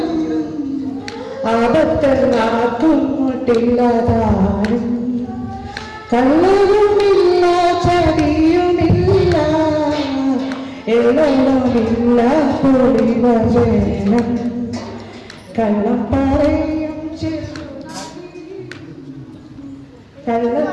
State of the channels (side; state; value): both; identical; correlation 1.00